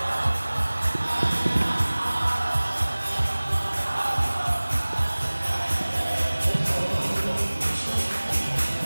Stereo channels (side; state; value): both; inverted; correlation -1.00